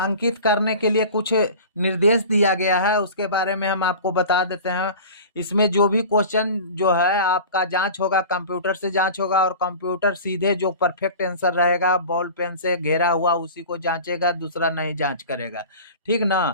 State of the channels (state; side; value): inverted; both; correlation -0.37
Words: करने के लिए कुछ निर्देश दिया गया है, उसके बारे में हम आपको बता देते हैं। इसमें जो भी क्वेश्चन जो है आपका जांच होगा, कंप्यूटर से जांच होगा, और कंप्यूटर सीधे जो परफेक्ट आंसर रहेगा बॉल पेन से घेरा हुआ उसी को जांचेगा, दूसरा नहीं जांच करेगा। ठीक